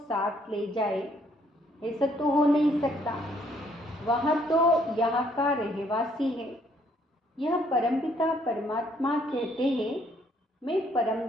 ले जाए, ऐसा तो हो नहीं सकता। वह तो यहाँ का रहवासी है। यह परमपिता परमात्मा कहते हैं मैं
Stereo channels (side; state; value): both; normal; correlation 0.66